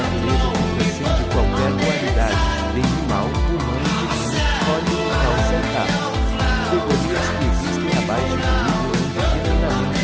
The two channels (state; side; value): identical; both; correlation 1.00